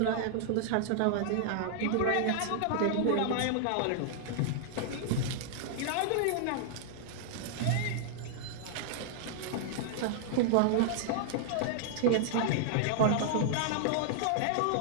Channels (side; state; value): both; different; correlation -0.01